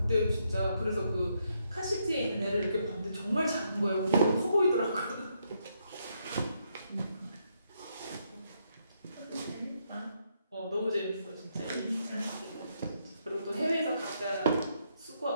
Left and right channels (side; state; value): both; inverted; correlation -0.77